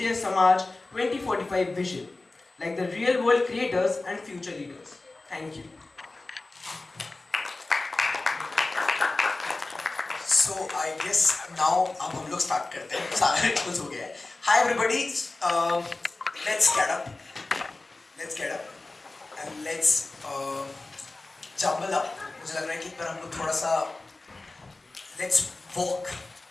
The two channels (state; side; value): quieter; right; 3.2 dB